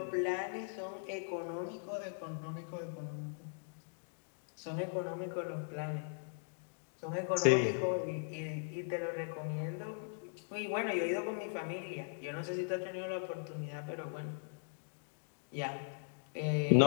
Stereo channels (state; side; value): silent; right; digital silence